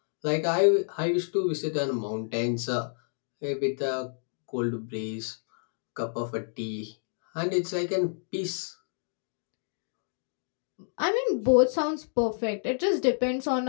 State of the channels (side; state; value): right; silent; digital silence